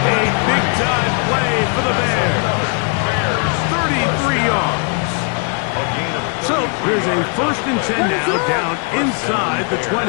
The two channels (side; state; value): right; quieter; 39.0 dB